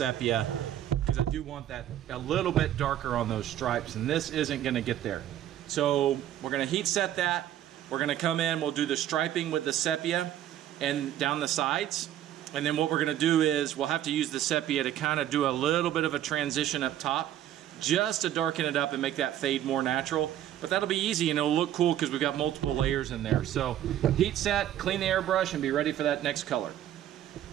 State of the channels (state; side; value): quieter; left; 11.8 dB